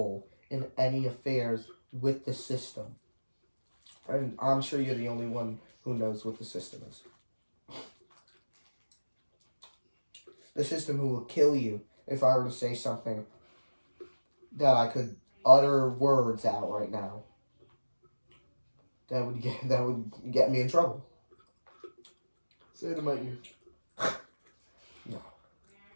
in any affairs with the system. And I'm sure you're the only one who knows what the system is. The system who will kill you if I were to say something that I could utter words out right now. That would get me in trouble. Say it in my ear.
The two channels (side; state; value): both; inverted; correlation -1.00